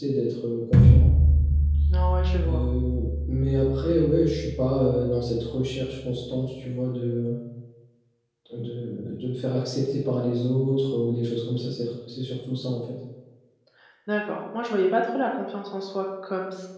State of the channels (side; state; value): both; identical; correlation 1.00